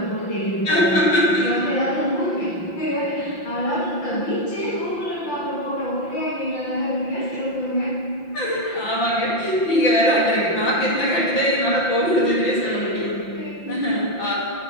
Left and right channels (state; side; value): late; right; 5.8 ms